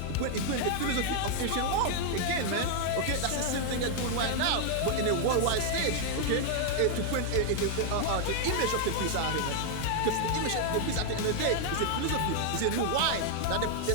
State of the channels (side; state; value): both; different; correlation 0.00